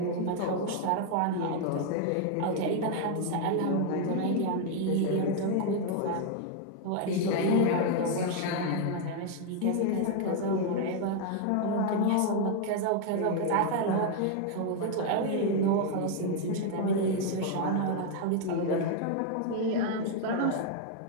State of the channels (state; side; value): different; both; correlation 0.00